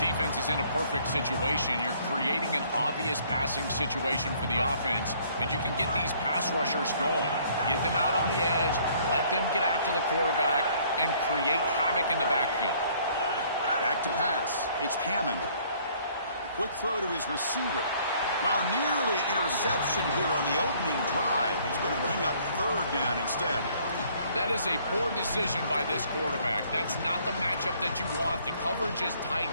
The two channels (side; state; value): both; inverted; correlation -0.60